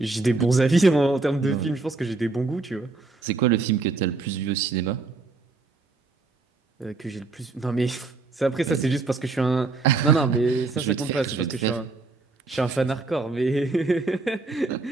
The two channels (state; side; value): quieter; left; 3.7 dB